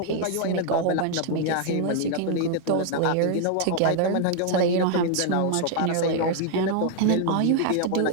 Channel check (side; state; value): both; different; correlation 0.00